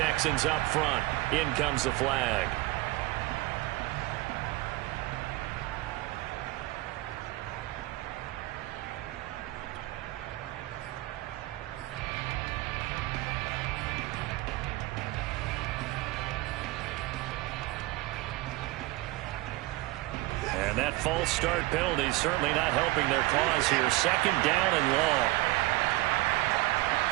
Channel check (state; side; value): quieter; left; 19.8 dB